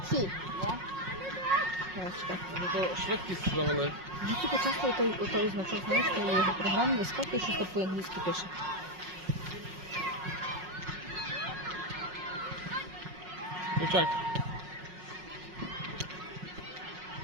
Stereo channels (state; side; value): late; left; 5.5 ms